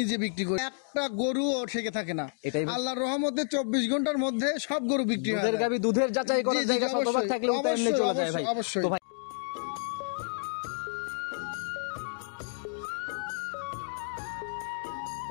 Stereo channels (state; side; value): silent; right; digital silence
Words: বিক্রি করি। একটা গরু ও থেকে থাকে না, আল্লাহর রহমতে 24 ঘন্টার মধ্যে সব গরু বিক্রি হয়। দুধের গাবি দুধের যাচাই করার জায়গা শতভাগ থাকলে ওটা এমনি চলে যায় ভাই। অবশ্যই। তো ভাই